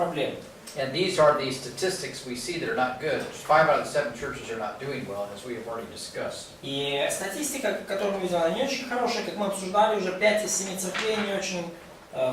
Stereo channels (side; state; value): both; identical; correlation 1.00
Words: And these are the statistics we see that are not good. 5 out of the 7 churches are not doing well, as we have already discussed. И статистика, которую мы видим, она не очень хорошая, как мы обсуждали, уже 5 из 7 церквей не очень